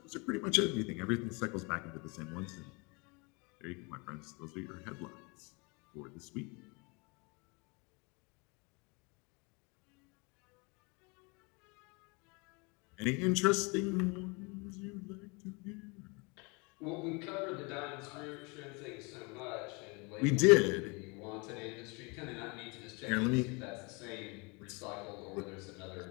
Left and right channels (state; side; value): quieter; right; 29.9 dB